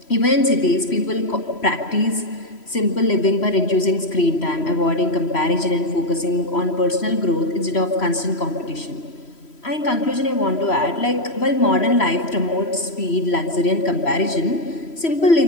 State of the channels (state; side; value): late; right; 3.1 ms